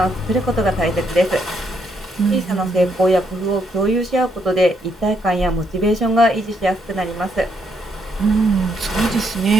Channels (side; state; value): both; normal; correlation 0.75